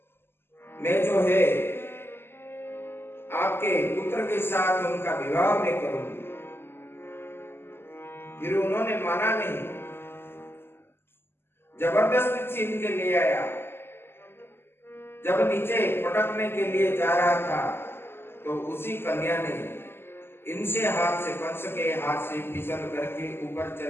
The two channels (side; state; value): right; late; 0.11 ms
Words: मैं जो है आपके पुत्र के साथ उनका विवाह में करूंगी। फिर उन्होंने माना नहीं, जबरदस्ती छीन के ले आया। जब नीचे पटकने के लिए जा रहा था, तो उसी कन्या ने इनसे हाथ से, कंस के हाथ से फिसल करके ऊपर